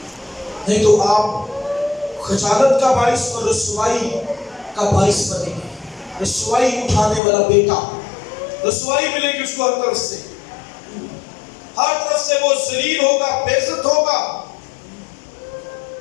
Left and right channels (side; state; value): right; drops out; at 7.2 s